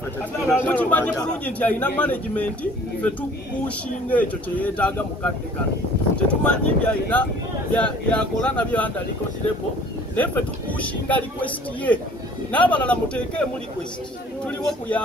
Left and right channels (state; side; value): normal; both; correlation 0.52